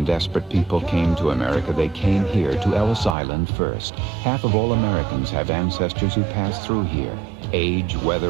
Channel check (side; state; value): left; drops out; at 3.2 s